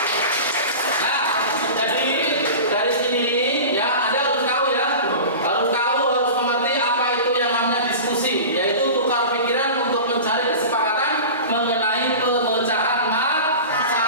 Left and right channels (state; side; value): inverted; both; correlation -0.33